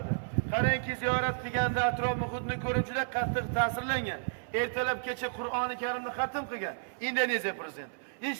Qarangki, ziyorat qilganda atrof muhitni ko'rib juda qattiq ta'sirlangan. Ertalab kecha Qur'oni Karimni xatm qilgan Indoneziya prezidenti.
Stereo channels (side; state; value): left; silent; 56 dB below the other